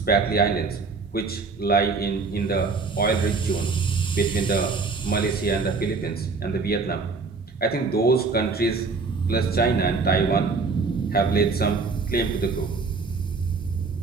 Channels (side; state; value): left; quieter; 4.3 dB